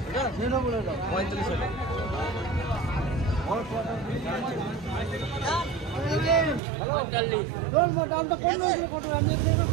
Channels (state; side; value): drops out; left; at 6.6 s